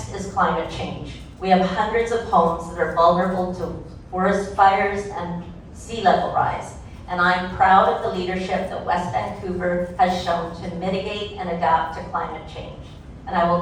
is climate change. We have hundreds of homes that are vulnerable to forest fires and sea level rise. And I'm proud of the leadership that West Vancouver has shown to mitigate and adapt to climate change. And I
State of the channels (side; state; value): both; identical; correlation 1.00